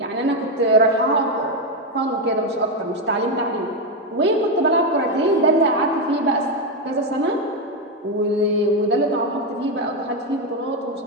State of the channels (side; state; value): both; normal; correlation 0.07